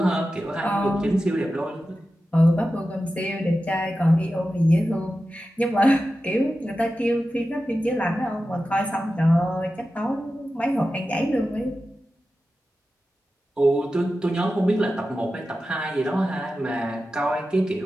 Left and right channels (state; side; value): normal; both; correlation 0.93